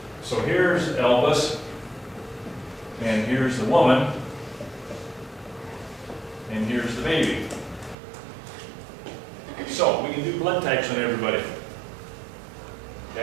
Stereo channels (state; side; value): drops out; left; at 8.0 s